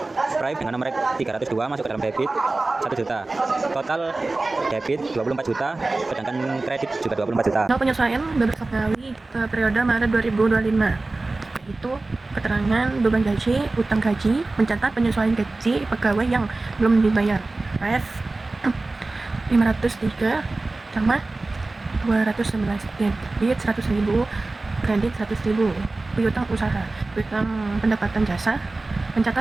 Prive dengan nomor 302 masuk ke dalam debit 1 juta. Total debit 24 juta, sedangkan kredit juga 24 juta. Soal penyesuaian Beberapa Ngawi periode Maret 2025, yaitu keterangan beban gaji, utang gaji, mencatat penyesuaian gaji pegawai yang belum dibayar. Ref 503 sama 211, debit 100.000, kredit 100.000. Piutang usaha, piutang pendapatan jasa,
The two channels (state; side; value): quieter; left; 3.2 dB